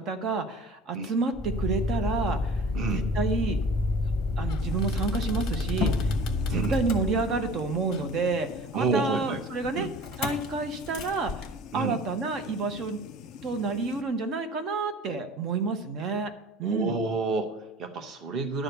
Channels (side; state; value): both; normal; correlation 0.43